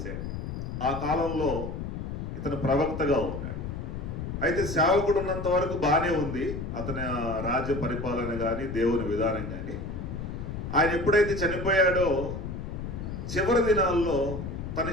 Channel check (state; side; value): noise; left; rumble, 6 dB below the sound